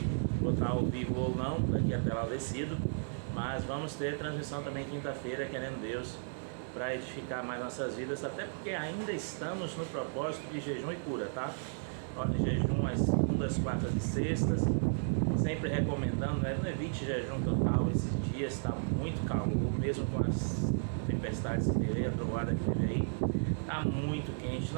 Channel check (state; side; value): silent; left; digital silence